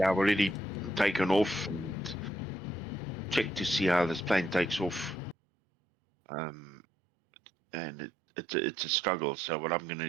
I've already taken off and checked to see how this plane takes off. And it's a struggle. So what I'm going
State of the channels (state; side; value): drops out; left; at 5.4 s